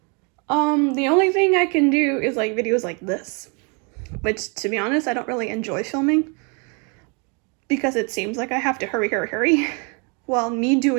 The only thing I can do is like videos like this. Which, to be honest, I don't really enjoy filming. Because it seems like I have to hurry. While me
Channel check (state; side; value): quieter; left; 34.3 dB